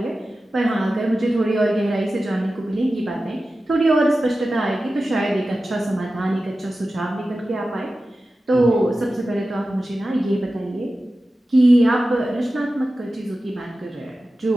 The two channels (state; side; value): normal; both; correlation 0.94